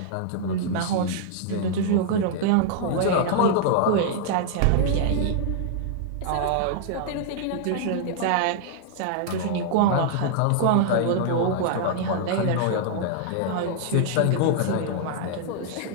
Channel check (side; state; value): both; different; correlation -0.01